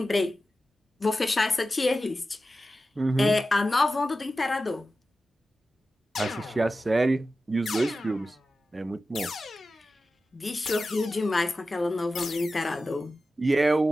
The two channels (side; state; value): both; normal; correlation 0.93